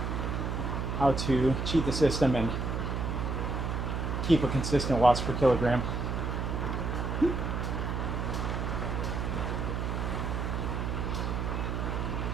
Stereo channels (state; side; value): noise; right; hum, 1 dB below the sound